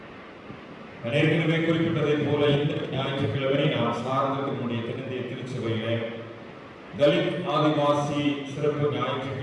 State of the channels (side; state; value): both; identical; correlation 1.00